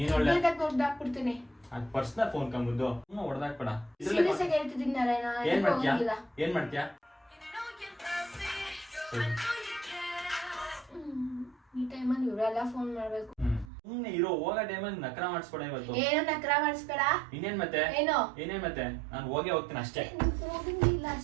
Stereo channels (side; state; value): left; drops out; at 13.7 s